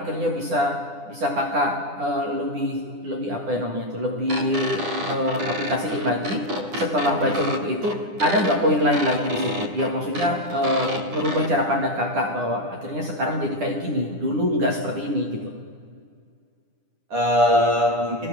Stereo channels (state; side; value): late; left; 10 ms